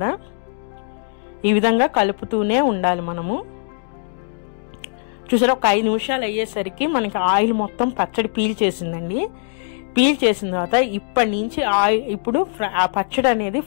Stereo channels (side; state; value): right; silent; digital silence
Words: ఈ విధంగా కలుపుతూనే ఉండాలి మనము. చూసారా, ఒక 5 నిమిషాలు అయ్యేసరికి మనకి ఆయిల్ మొత్తం పచ్చడి పీల్చేసిందండి. పీల్చేసిన తర్వాత ఇప్పటి నుంచి ఇప్పుడు ఆ పచ్చడి అనేది